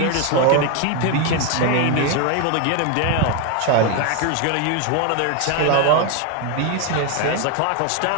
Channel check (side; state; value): both; different; correlation 0.01